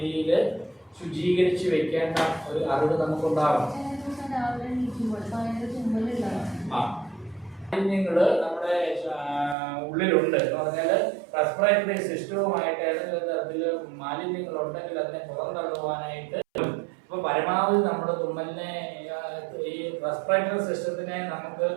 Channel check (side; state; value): left; drops out; at 9.6 s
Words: ശുചീകരിച്ച് വെക്കേണ്ട ഒരു അറിവ് നമുക്കുണ്ടാകണം. മാലിന്യങ്ങള് നമ്മുടെ ഉള്ളിലുണ്ട് എന്ന് പറഞ്ഞാൽ റെസ്പിറേറ്ററി സിസ്റ്റവുമായിട്ട് ഏതെങ്കിലും തരത്തിൽ മാലിന്യങ്ങൾ ഉണ്ടെങ്കിൽ അതിനെ പുറന്തള്ളുവാനായിട്ട് ഇപ്പൊ പരമാവധി നമ്മുടെ തുമ്മലിനെ ഈ റെസ്പിറേറ്ററി സിസ്റ്റത്തിനെ നമുക്ക്